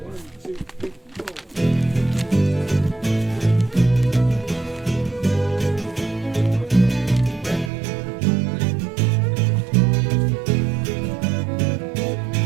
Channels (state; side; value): drops out; left; at 7.7 s